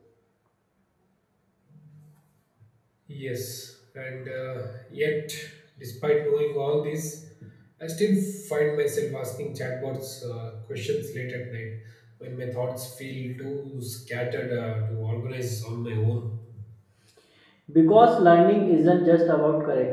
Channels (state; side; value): identical; both; correlation 1.00